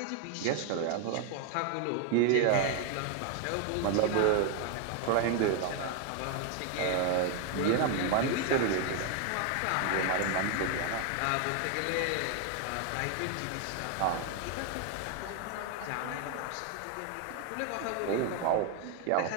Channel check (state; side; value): different; both; correlation 0.01